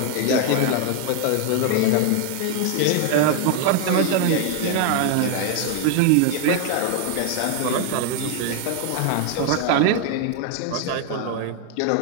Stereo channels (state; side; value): different; both; correlation 0.00